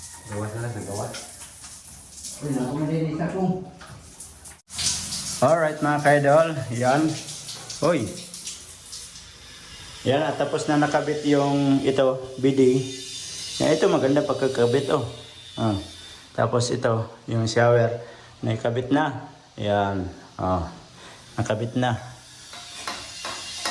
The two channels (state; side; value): identical; both; correlation 1.00